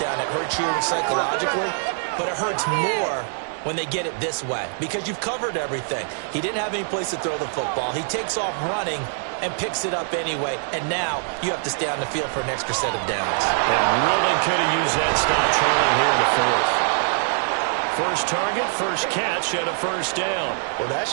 it hurts you psychologically, but it hurts more when they get it this way because you've covered everything. He didn't have any place to throw the football. He takes off running and picks it up anyway, and now you have to stay on the field for an extra set of downs. And really could have used that stop trailing here in the 4th. First target, first catch, and a first down. Well, that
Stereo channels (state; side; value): silent; left; 63 dB below the other